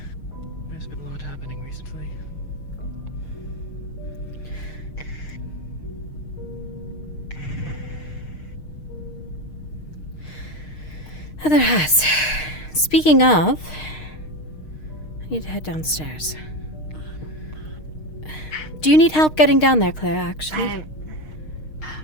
There's been a lot happening recently. There has. Speaking of, I need to head downstairs. Do you need help getting down there, Claire, actually?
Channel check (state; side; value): late; right; 6.5 ms